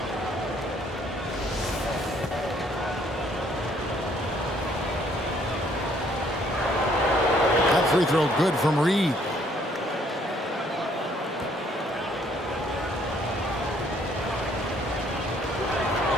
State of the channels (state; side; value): normal; both; correlation 0.64